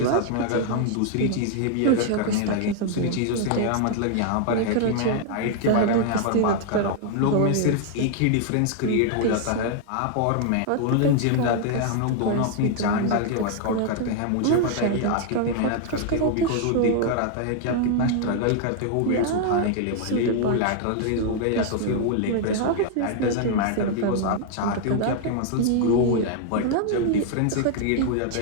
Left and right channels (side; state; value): both; different; correlation 0.00